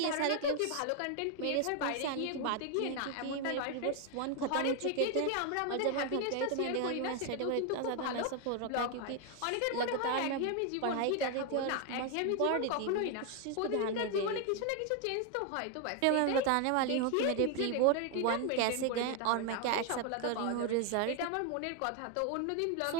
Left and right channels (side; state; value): both; different; correlation 0.01